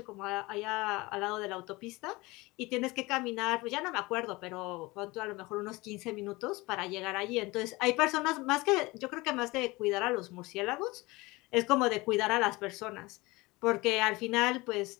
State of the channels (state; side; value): quieter; right; 22.5 dB